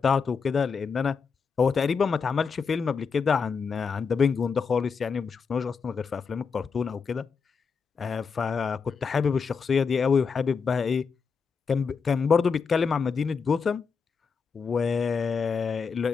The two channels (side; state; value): right; quieter; 5.6 dB